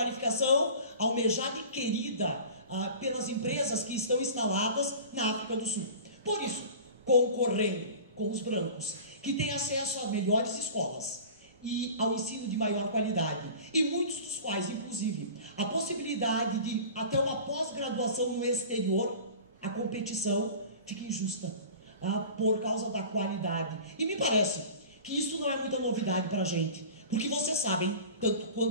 almejada e querida pelas empresas que estão instaladas na África do Sul. Por isso, concorrendo com os brancos, que têm acesso a melhores escolas e ao ensino de maior qualidade, e muitos dos quais, inclusive, a possibilidade de até uma pós-graduação no exterior, a competição fica injusta por causa da qualidade. E me parece que isso não é muita novidade para a gente, porque vocês sabem, tanto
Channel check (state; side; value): inverted; both; correlation -0.39